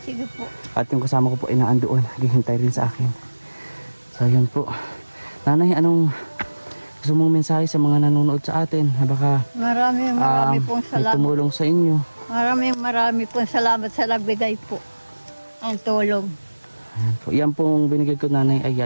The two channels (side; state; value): both; inverted; correlation -1.00